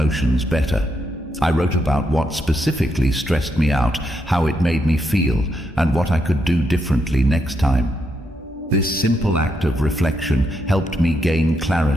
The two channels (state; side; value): normal; both; correlation 0.80